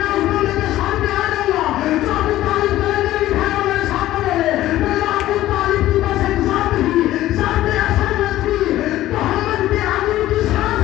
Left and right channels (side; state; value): right; quieter; 14.7 dB